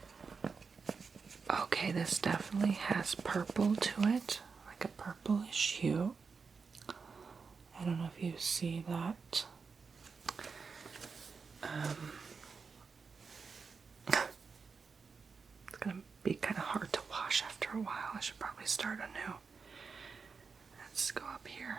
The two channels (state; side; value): quieter; left; 5.2 dB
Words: Okay, this definitely has purple to it, like a purplish hue. I don't know if you see that. It's gonna be kind of hard to wash after a while. I should probably start anew. Let's go up